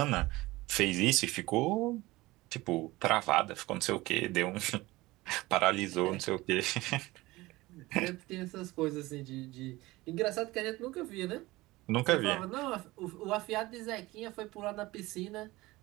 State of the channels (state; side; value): quieter; left; 19.9 dB